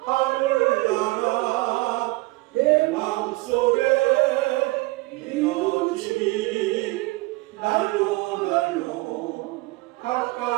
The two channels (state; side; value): quieter; left; 22.1 dB